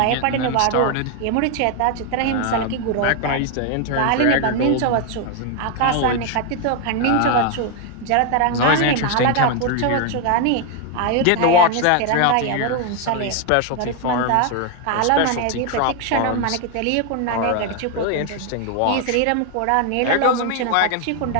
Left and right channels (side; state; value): both; different; correlation 0.01